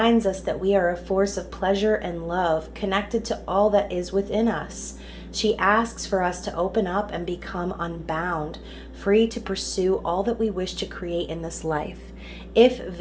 us that we are a force of pleasure and love connected to all that is within us. She asks for us to open up and become unbound, free to pursue all that we wish to create in this life. If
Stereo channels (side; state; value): both; identical; correlation 1.00